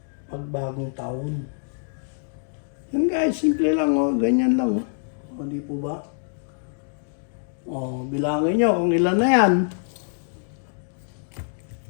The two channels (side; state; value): right; silent; digital silence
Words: pag bagong taon. Yan guys, simple lang oh, ganyan lang oh. O di po ba? O, bilangin niyo kung ilan na yan.